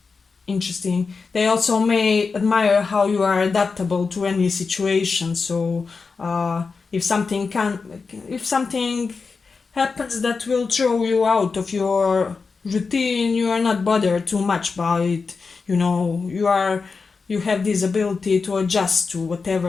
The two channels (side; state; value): right; quieter; 4.7 dB